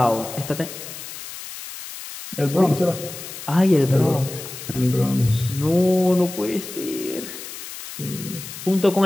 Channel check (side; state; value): left; noise; hiss, 11 dB below the sound